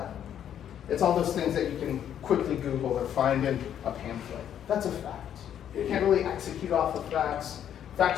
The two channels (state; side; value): quieter; right; 9.7 dB